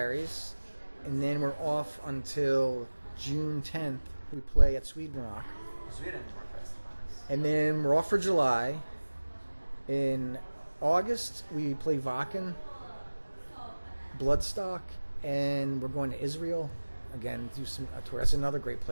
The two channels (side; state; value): both; inverted; correlation -1.00